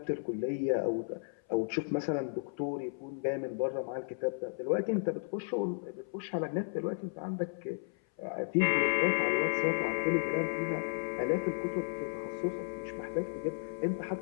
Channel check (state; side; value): silent; right; 55 dB below the other